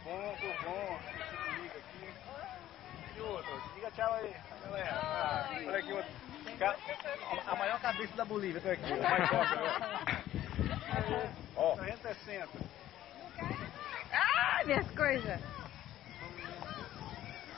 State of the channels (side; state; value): right; quieter; 13.2 dB